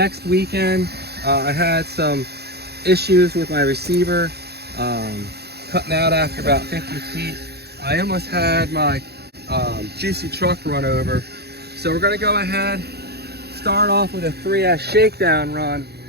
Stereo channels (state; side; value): late; left; 0.47 ms